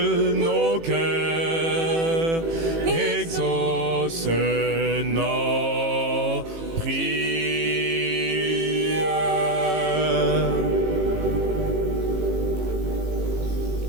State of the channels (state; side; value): late; left; 18 ms